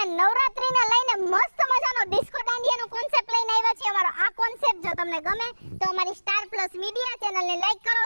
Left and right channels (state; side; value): inverted; both; correlation -1.00